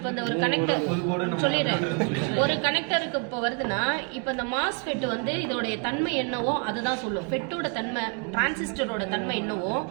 இந்த ஒரு கனெக்டர் சொல்லிடுறேன். ஒரு கனெக்டருக்கு இப்போ வருதுன்னா இப்போ இந்த மாஸ்ஃபெட் வந்து இதோடைய தன்மை என்னவோ அதுதான் சொல்லும். ஃபெட்டோட தன்மை டிரான்சிஸ்டரோட தன்மை என்னவோ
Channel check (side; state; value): left; quieter; 36.5 dB